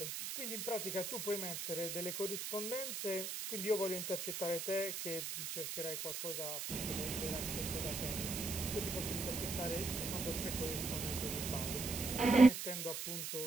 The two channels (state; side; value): noise; right; hiss, 4 dB below the sound